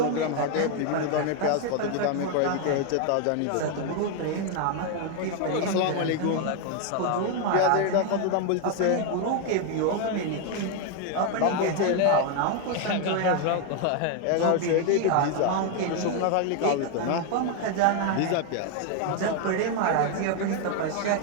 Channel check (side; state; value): both; different; correlation 0.01